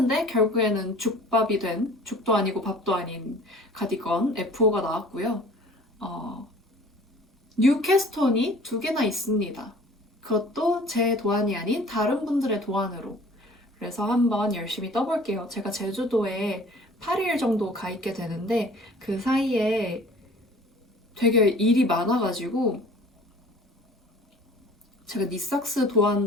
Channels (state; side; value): normal; both; correlation 0.48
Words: 결국에는 죽밥이 된, 죽도 아니고 밥도 아닌 가디건 F5가 나왔고요. 뉴캐스톤이 2개나 있습니다. 그것도 제 도안이 아닌 다른 분들의 도안으로. 그래서 한번 열심히 떠볼게요. 제가 제주도에 8일 정도 가 있게 되는데 그 사이에 되게 일이 많아가지고 제가 니삭스